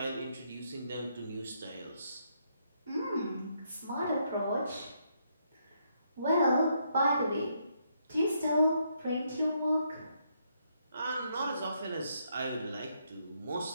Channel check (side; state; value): both; inverted; correlation -0.75